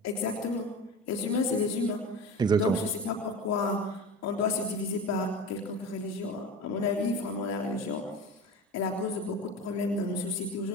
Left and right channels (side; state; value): both; normal; correlation 0.30